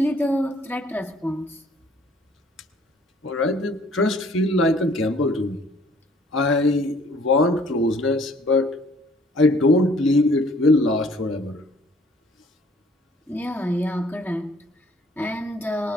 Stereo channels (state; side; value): normal; both; correlation 0.58